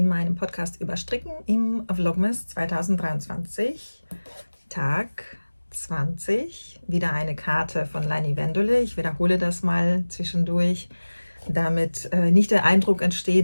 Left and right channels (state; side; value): inverted; both; correlation -1.00